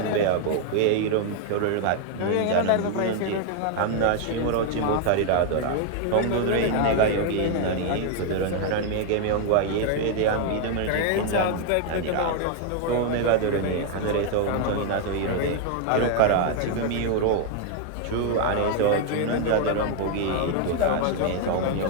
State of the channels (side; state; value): both; different; correlation 0.00